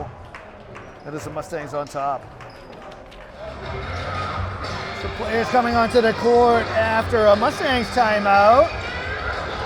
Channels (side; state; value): both; identical; correlation 1.00